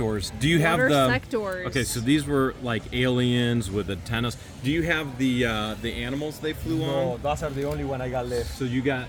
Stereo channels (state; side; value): identical; both; correlation 1.00